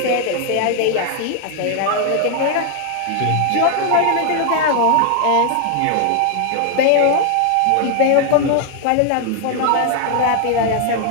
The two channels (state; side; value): different; both; correlation 0.00